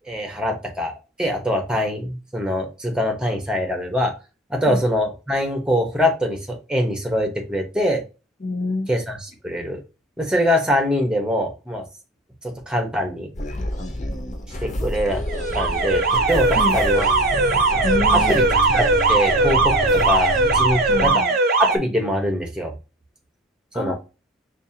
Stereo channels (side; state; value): both; normal; correlation 0.34